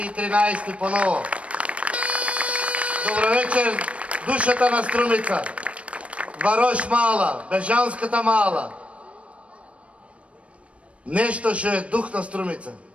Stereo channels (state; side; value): late; left; 0.062 ms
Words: 13 по ново. Добро вечер, душата на Струмица. Варош мала, Бежанската мала. Нешто што е дух на Струмица.